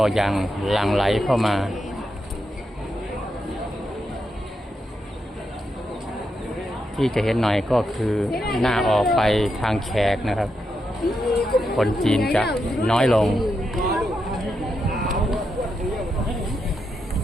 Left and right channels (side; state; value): both; normal; correlation 0.84